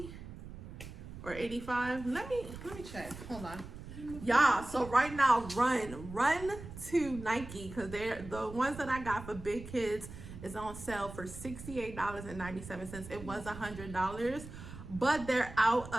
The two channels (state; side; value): noise; right; rumble, 12 dB below the sound